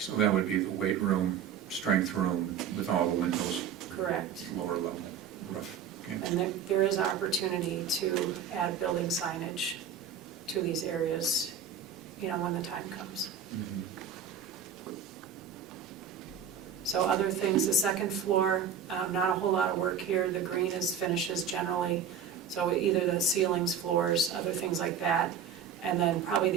that would be the weight room, strength room with all the windows, Correct. lower level roof. Okay. And there is opportunity to add building signage to these areas, you know, when the time comes. So other things, the second floor, not a whole lot of work here. The green is finishes generally. So either the ceilings, floors, other things like that. And then probably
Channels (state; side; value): quieter; left; 7.3 dB